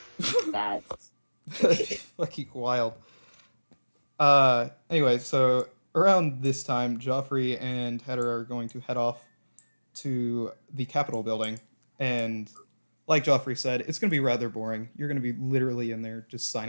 That's fucking wild. Anyway, so around this time, Joffrey and Heather are going to head off to the Capitol building, and like Joffrey said, it's going to be rather boring. You're going to be literally in there just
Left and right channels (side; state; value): both; inverted; correlation -1.00